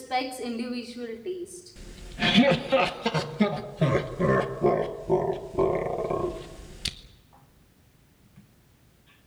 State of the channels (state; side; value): identical; both; correlation 1.00